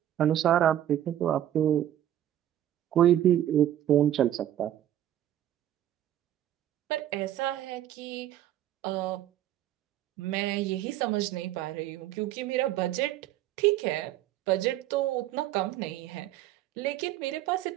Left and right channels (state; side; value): quieter; left; 12.1 dB